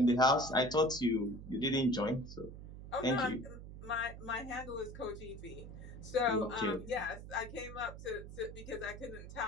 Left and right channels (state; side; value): noise; right; hum, 12 dB below the sound